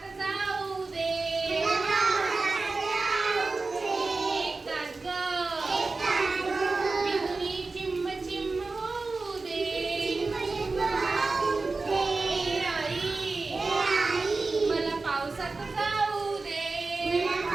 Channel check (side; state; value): left; quieter; 3.7 dB